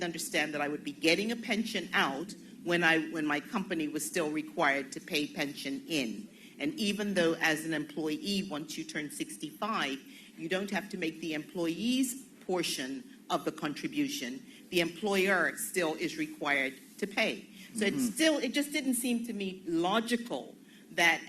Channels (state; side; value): identical; both; correlation 1.00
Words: understand that I would be getting a pension out when my company was still required to pay pension in. And even though as an employee, once you turn 65, you don't have to make the employee's portion of the contribution, the employer still is required to pay. So it just didn't seem to me logical that